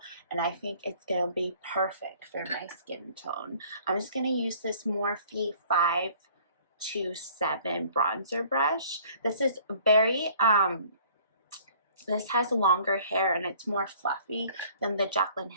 and I think it's going to be perfect for my skin tone. I'm just going to use this Morphe 527 bronzer brush. This is very, this has longer hair and it's more fluffy than the Jaclyn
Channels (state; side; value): inverted; both; correlation -0.54